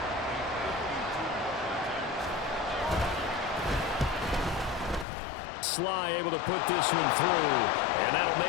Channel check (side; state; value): right; drops out; at 5.1 s